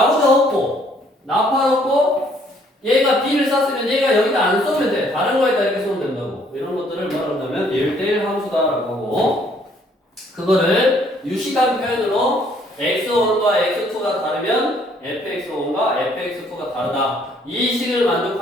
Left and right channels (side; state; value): both; normal; correlation 0.64